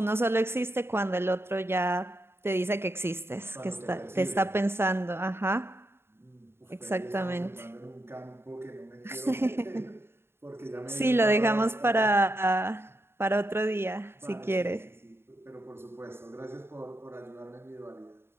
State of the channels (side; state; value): left; late; 0.11 ms